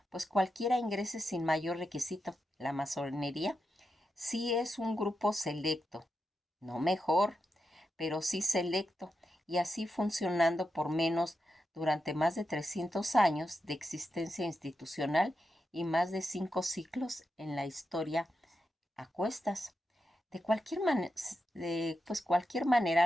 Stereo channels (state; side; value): normal; both; correlation 0.87